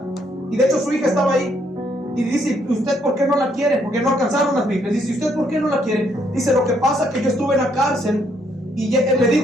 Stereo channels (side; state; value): both; normal; correlation 0.71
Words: Y de hecho su hija estaba ahí. Y dice: ¿usted por qué no la quiere? Porque no alcanzaron las Biblias. Dice: ¿usted por qué no la quiere? Dice: lo que pasa es que yo estuve en la cárcel. Y le